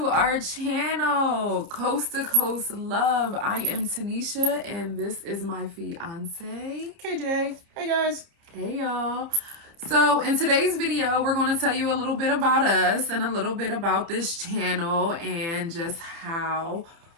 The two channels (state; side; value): late; left; 30 ms